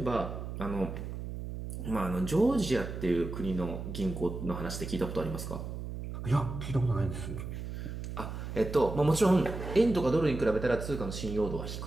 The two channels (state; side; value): noise; right; hum, 7 dB below the sound